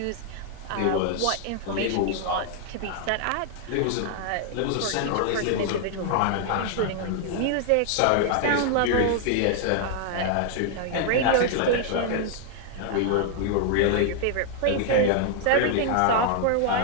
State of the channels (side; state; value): both; different; correlation 0.00